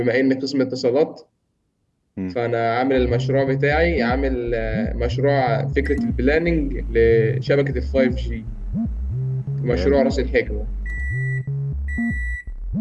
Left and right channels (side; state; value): both; identical; correlation 1.00